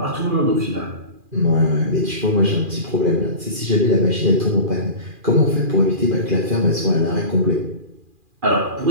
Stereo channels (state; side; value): late; left; 2.4 ms